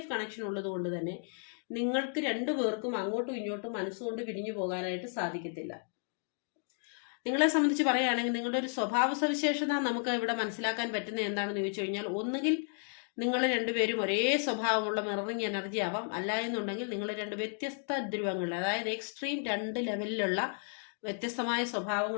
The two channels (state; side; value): silent; right; 56 dB below the other